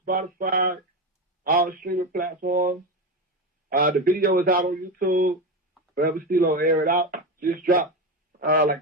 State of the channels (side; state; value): both; normal; correlation 0.17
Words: Spotify, all streaming platforms. The video is out on YouTube. Forever Stilo, Air It Out. Just dropped like